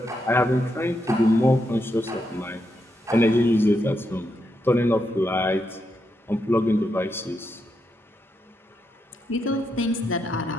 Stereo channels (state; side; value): normal; both; correlation 0.82